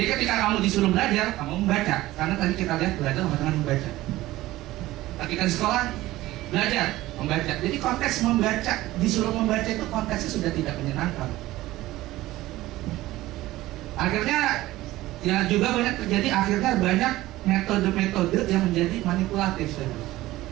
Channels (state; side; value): quieter; left; 16.9 dB